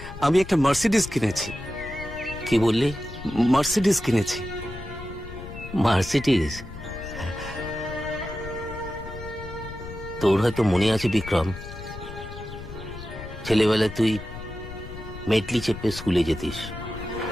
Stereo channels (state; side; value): noise; left; rumble, 12 dB below the sound